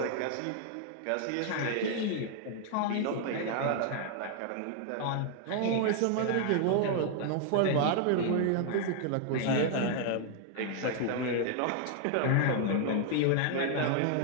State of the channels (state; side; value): different; both; correlation 0.00